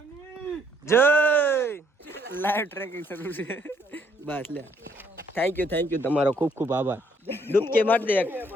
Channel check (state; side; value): normal; both; correlation 0.67